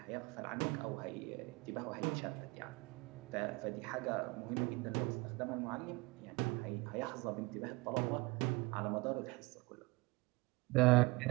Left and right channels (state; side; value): quieter; left; 23.9 dB